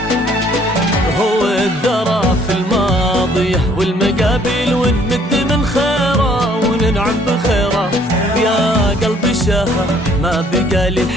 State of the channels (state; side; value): normal; both; correlation 0.61